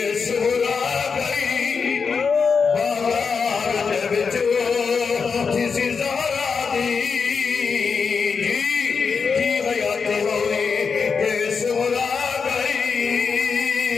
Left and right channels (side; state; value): right; quieter; 5.5 dB